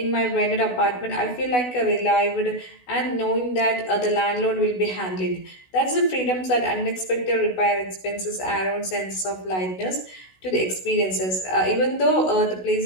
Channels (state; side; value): late; right; 16 ms